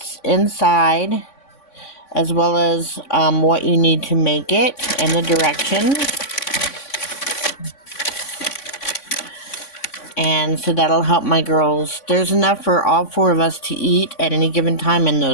inside, as well as what you need to make it, and the directions. And so that'll help my girls. There's enough for all four of us to eat at any given time in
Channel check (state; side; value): late; right; 3.5 ms